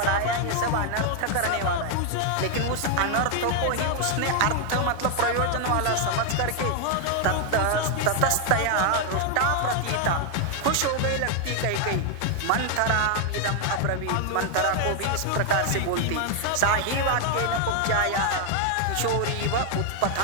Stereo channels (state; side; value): different; both; correlation 0.00